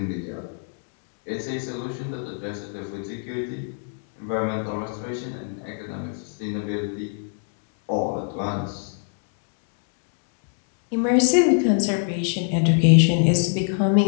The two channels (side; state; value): right; silent; 62 dB below the other